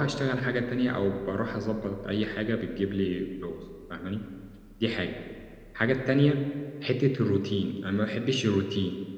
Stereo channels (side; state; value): both; identical; correlation 1.00